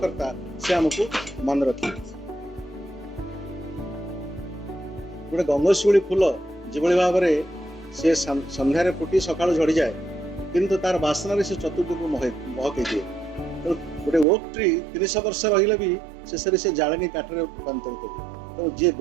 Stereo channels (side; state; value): left; drops out; at 14.2 s